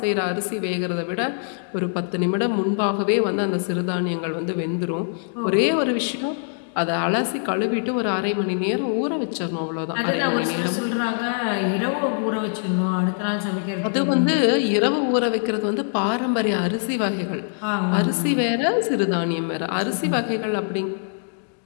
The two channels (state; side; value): silent; right; digital silence